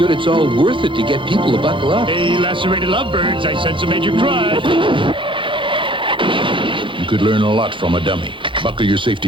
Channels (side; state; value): left; late; 0.24 ms